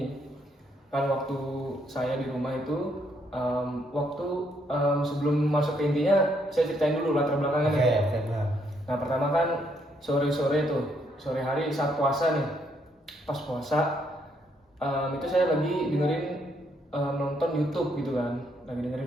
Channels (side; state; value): both; normal; correlation 0.73